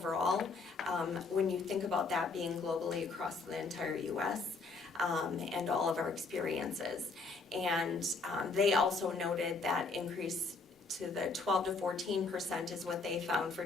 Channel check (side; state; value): right; quieter; 4.0 dB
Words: when you think about that being globally across the entire US and all of our experiences. And they also noted that increase to the 12 to 14% is what they found for